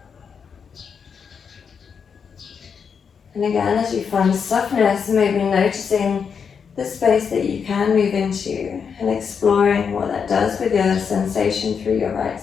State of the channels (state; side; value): quieter; right; 6.5 dB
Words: And again, as you find softness, maybe noticing the space that you can move into and exploring what that does with your sensation through your right